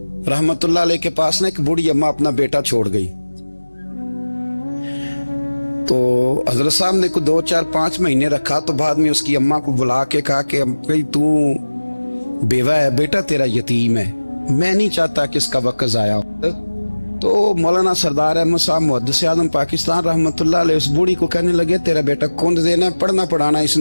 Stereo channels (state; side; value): inverted; both; correlation -1.00